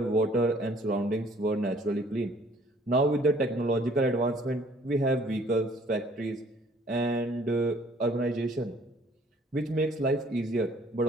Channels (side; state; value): both; normal; correlation 0.58